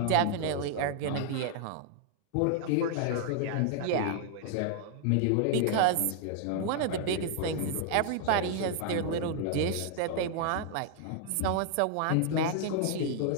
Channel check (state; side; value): different; both; correlation 0.00